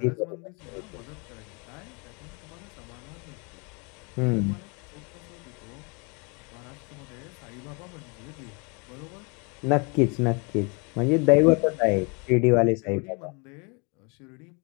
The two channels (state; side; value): quieter; right; 32.8 dB